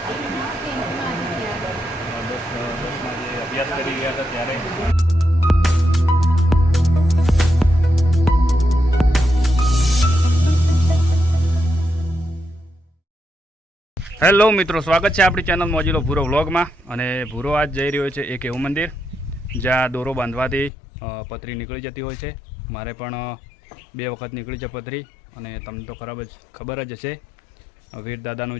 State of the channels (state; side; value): drops out; right; at 20.7 s